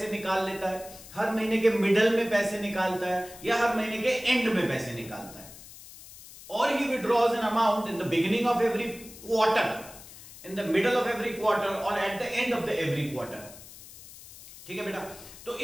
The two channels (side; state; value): left; noise; hiss, 17 dB below the sound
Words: निकाल लेता है, हर महीने के मिडल में पैसे निकालता है, या हर महीने के एंड में पैसे निकालता है। और ही withdraws an amount in the beginning of every quarter, in the middle of every quarter और at the end of the every quarter. ठीक है बेटा। तो